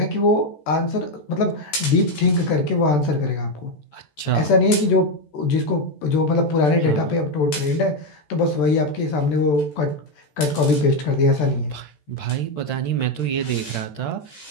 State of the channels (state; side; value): late; right; 14 ms